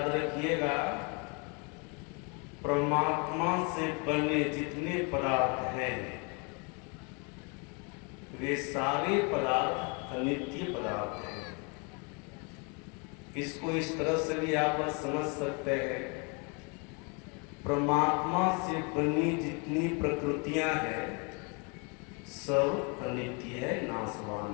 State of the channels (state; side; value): quieter; right; 32.8 dB